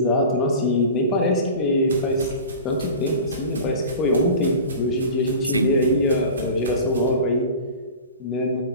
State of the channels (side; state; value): both; inverted; correlation -0.36